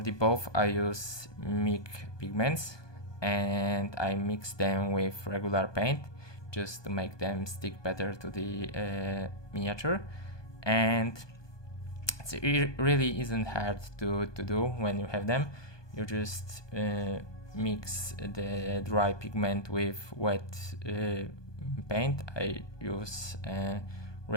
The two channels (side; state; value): right; late; 1.2 ms